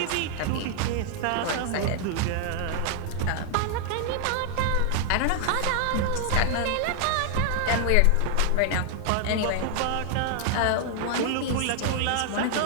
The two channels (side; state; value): both; different; correlation 0.00